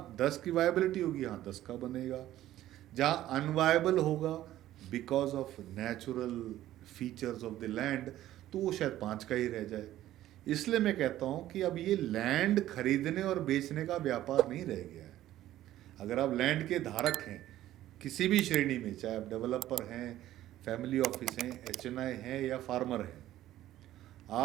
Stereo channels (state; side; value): quieter; left; 13.8 dB